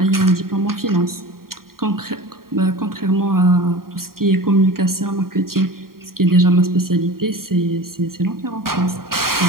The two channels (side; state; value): left; late; 0.92 ms